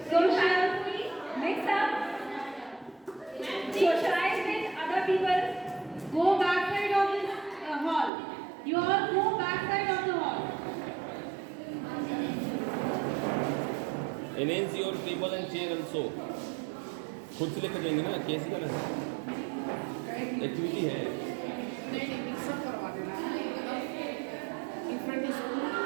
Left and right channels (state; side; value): drops out; left; at 8.1 s